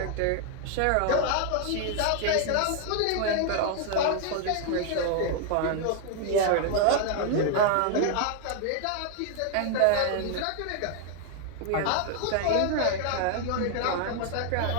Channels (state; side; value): different; both; correlation 0.00